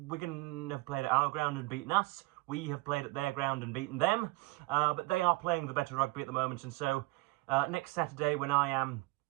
have played at our ground and beaten us. We have played at their ground and beaten them. But they are playing the better rugby at the moment, and so next Saturday, when I am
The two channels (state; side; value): quieter; left; 22.2 dB